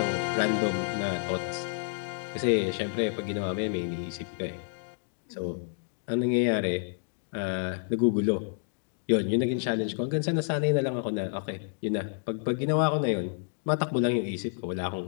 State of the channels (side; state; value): right; silent; digital silence